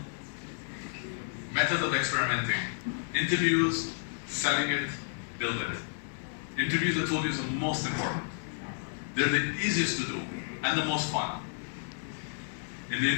methods of experimenting. Interviews, selling it, build it. Interviews, I told you, is the most important. They're the easiest to do and the most fun. In the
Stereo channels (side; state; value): right; silent; 57 dB below the other